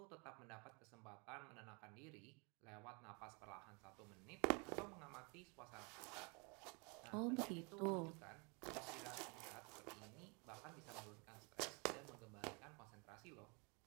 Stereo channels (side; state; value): left; quieter; 31.8 dB